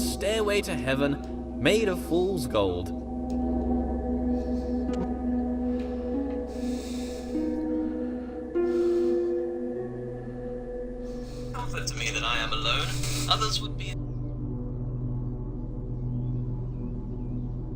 to heaven, made of fool's gold. Comfort to me that I am alone. Others would be.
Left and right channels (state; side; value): identical; both; correlation 1.00